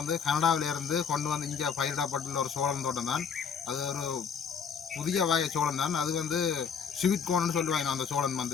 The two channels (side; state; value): right; quieter; 6.6 dB